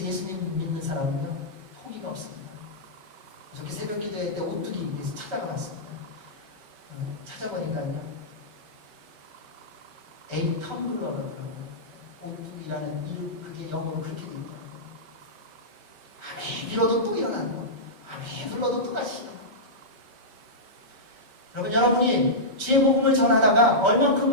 예수님 믿는 사람은요, 포기가 없습니다. 어저께 새벽 기도회 때 오뚜기 위해서 찾아가 봤습니다. 찾아보니까요, A 텀블러라더라고요. 오뚜기라는 이름, 그게 영어로 그렇게 돼 있더라고요. 아무리 빌어도 또 일어나는 거. 아무리 불러도 또 다시 일어나는 거. 여러분, 여러분이 주의 복음을 전하다가 얼만큼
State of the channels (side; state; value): left; late; 5.2 ms